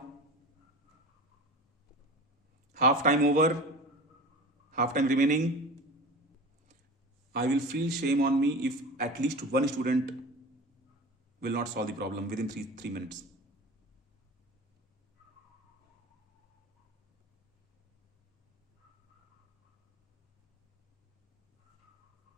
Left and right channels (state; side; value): normal; both; correlation 0.34